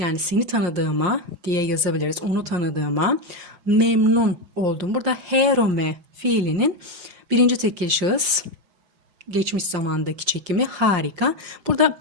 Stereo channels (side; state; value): left; late; 4.9 ms